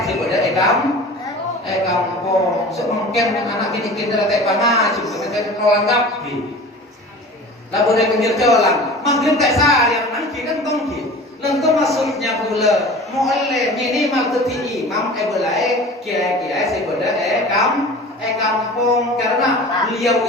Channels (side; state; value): both; normal; correlation 0.39